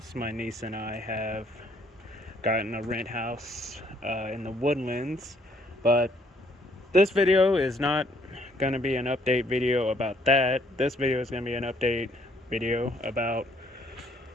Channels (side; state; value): both; normal; correlation 0.66